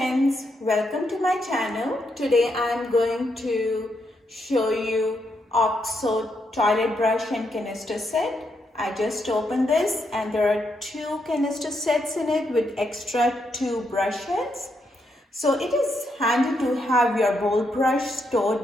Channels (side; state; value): both; normal; correlation 0.79